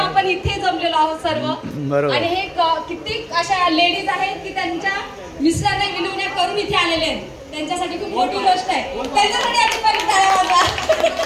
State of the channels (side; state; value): both; identical; correlation 1.00